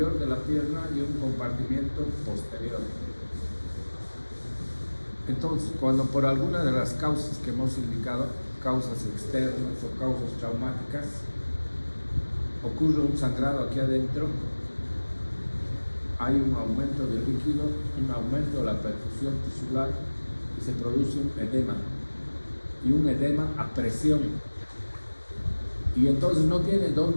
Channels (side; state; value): both; inverted; correlation -1.00